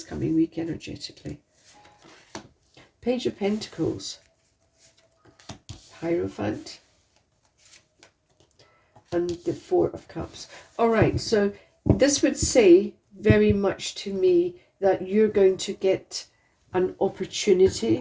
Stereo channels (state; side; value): identical; both; correlation 1.00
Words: coming week energetically? Page of Pentacles. Hierophant. And the Four of Cups. All right, so this would say very much to me that you're going to get an